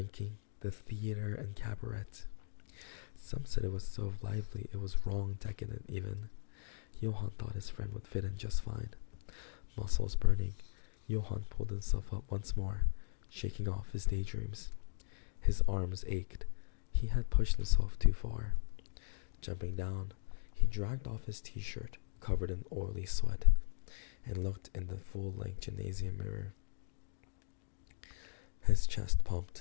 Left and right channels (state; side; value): silent; right; digital silence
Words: the theater and cabaret. Some said it was so lively it was wrong, decadent even. Johann thought his friend would fit in just fine. Muscles burning, Johann pulled himself up once more, shaking off his daydreams. His arms ached. He had pushed himself too far. Jumping down, he dragged off his t-shirt, covered in oily sweat, and looked in the full-length gymnasium mirror. His chest